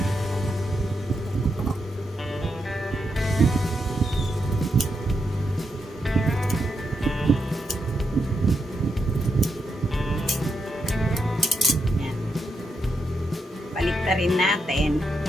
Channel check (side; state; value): both; normal; correlation 0.83